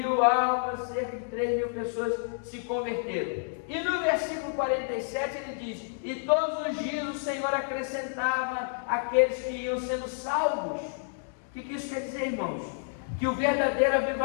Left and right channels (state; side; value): silent; right; digital silence